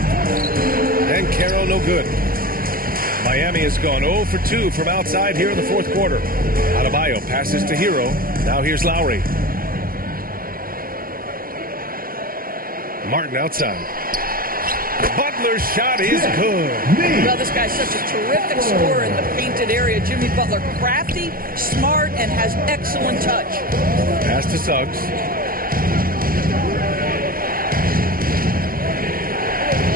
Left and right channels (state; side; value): late; left; 0.42 ms